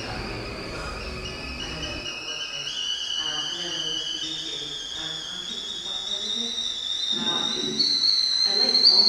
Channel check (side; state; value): both; identical; correlation 1.00